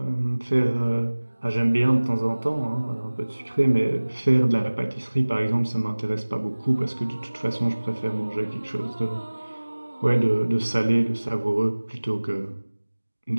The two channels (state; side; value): inverted; both; correlation -1.00